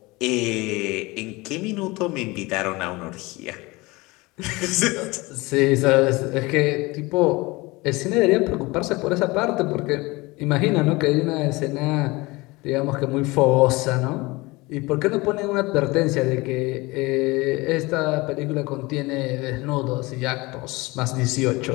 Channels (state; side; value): quieter; right; 23.0 dB